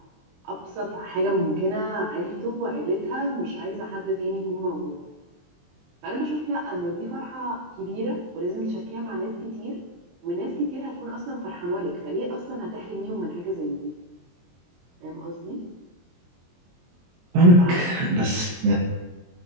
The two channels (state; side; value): late; left; 23 ms